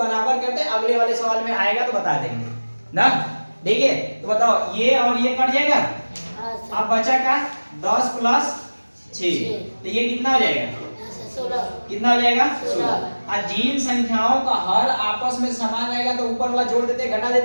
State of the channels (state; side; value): inverted; both; correlation -1.00